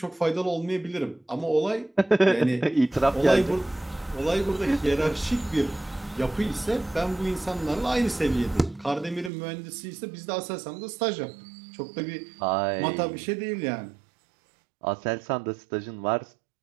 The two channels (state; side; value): drops out; left; at 9.3 s